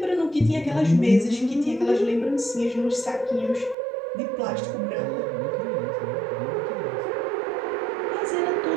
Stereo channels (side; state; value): left; drops out; at 3.8 s